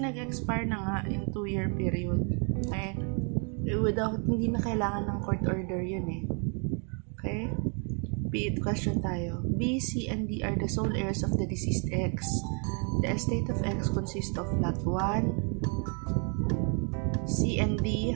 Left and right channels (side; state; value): left; quieter; 39.3 dB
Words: nag-expire na nga yung 2-year period. Okay? Hindi na kailangan ng court order yun eh. Okay? Question tayo. B, C, and D are the sole heirs of the deceased X. The estate of X consists of lot 1. C and D